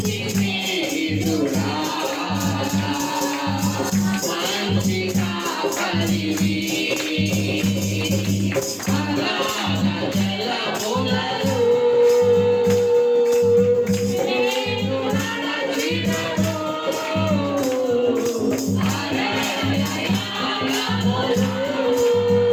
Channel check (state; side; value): identical; both; correlation 1.00